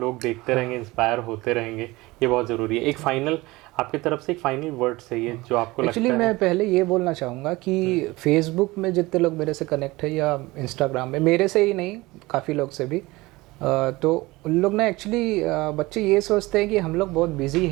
देखते रहेंगे, इंस्पायर होते रहेंगे, ये बहुत ज़रूरी है। एक फाइनल आपकी तरफ से एक फाइनल वर्ड चाहिए जो आपको लगता है। एक्चुअली मैं पहले ये बोलना चाहूँगा कि फेसबुक में जितने लोग मेरे से कनेक्ट है या इंस्टाग्राम में, मेरे से ही नहीं काफ़ी लोग से भी, तो उन लोग ना एक्चुअली बच्चे ये सोचते हैं कि हम लोग बहुत बिजी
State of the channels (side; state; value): left; quieter; 21.0 dB